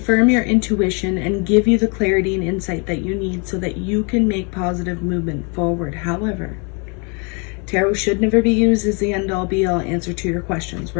your intuition and give you the clarity and insight that you need so that you can make positive movement forward. However, tarot should never be used as the end-all be-all answer to your questions,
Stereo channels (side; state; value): right; quieter; 34.5 dB